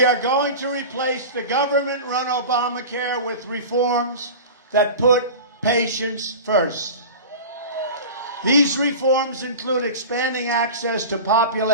are going to replace the government-run Obamacare with reforms that put patients first. These reforms include expanding access to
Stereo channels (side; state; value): both; inverted; correlation -0.32